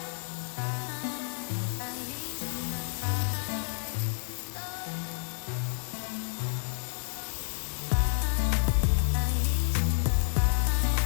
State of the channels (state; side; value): silent; right; digital silence